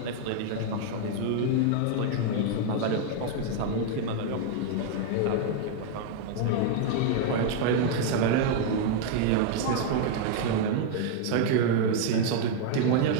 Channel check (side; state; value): both; different; correlation 0.00